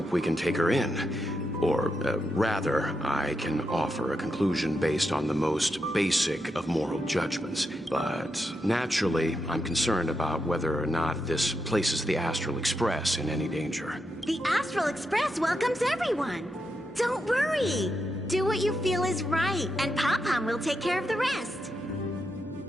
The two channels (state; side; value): normal; both; correlation 0.84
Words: we can take her in. Or, rather, I can offer a conclusion based on the most basic of moral judgments. But naturally, I'm concerned about whether or not this places the Astral Express in any danger. The Astral Express welcomes everyone. Don't worry. Do what you feel is right, and Pom-Pom will take care of the rest.